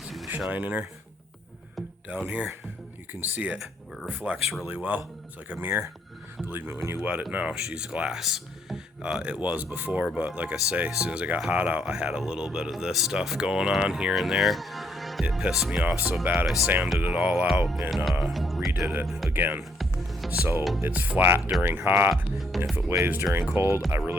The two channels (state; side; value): normal; both; correlation 0.70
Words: See the shine in her? Down here, you can see it. It reflects really well. It's like a mirror. Believe me, when you wet it now, she's glass. It was before, but like I say, as soon as it got hot out, I had a little bit of this stuff going on here and there. It pissed me off so bad, I sanded it all out and redid it again. So it's flat during hot, and if it waves during cold, I